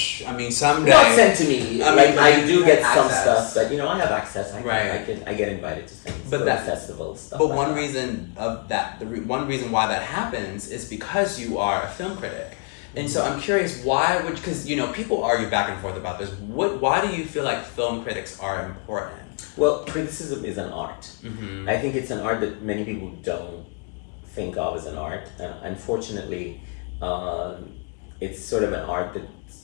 someday. Not sent to me. I do get some access. stuff, but I have access. I get invited to things. But that festival stuff. But like one that. reason of that, one reason why that happens is because you are a film critic. And so I'm curious, because people argue back and forth about this. Why do you feel like film critics are important? Well, criticism is an art. I think it's an art that many people don't think of as an art. Unfortunately, it's sort of an art that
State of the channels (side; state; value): right; quieter; 36.8 dB